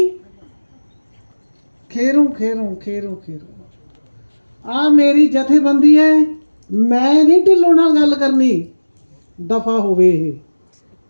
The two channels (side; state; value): both; inverted; correlation -1.00